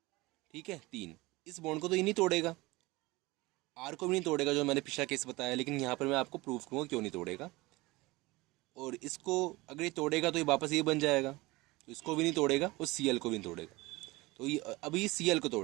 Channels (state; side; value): quieter; left; 21.8 dB